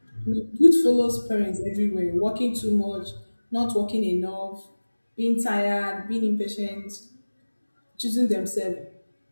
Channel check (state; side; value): inverted; both; correlation -1.00